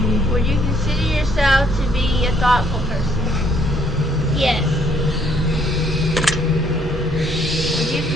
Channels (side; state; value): both; normal; correlation 0.66